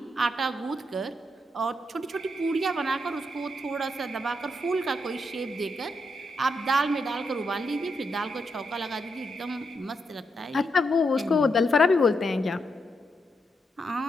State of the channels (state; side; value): normal; both; correlation 0.81